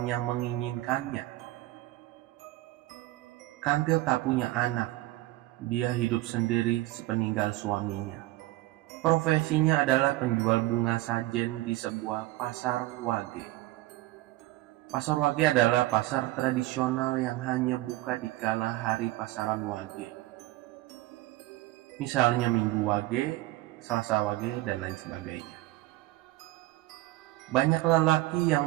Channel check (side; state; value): left; quieter; 17.9 dB